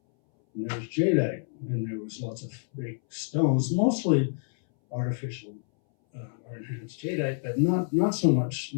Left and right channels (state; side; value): silent; right; 59 dB below the other